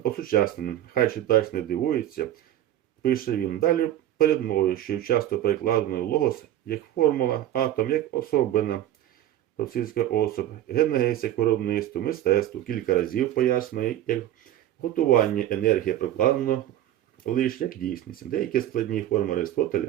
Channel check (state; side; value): quieter; left; 12.7 dB